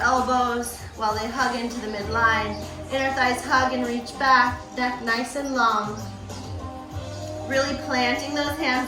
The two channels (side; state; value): both; identical; correlation 1.00